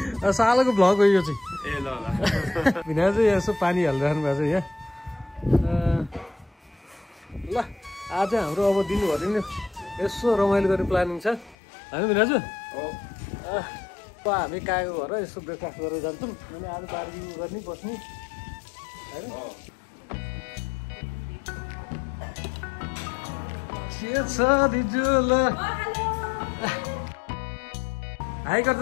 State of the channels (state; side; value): drops out; right; at 11.6 s